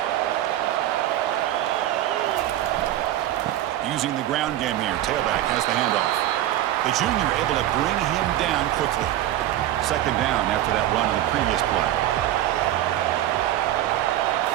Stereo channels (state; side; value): quieter; left; 13.3 dB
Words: Using the ground game here, tailback has the handoff. The junior able to bring him down quickly. Second down after that run on the previous play.